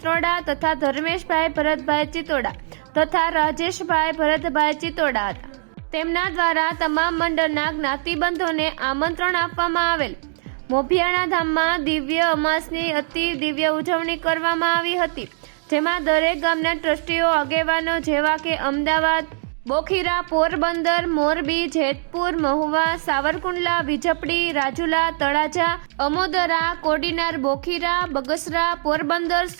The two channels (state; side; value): silent; left; digital silence